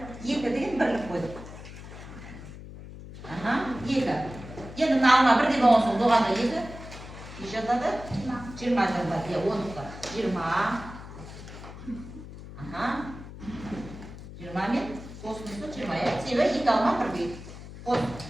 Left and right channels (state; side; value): noise; left; hum, 13 dB below the sound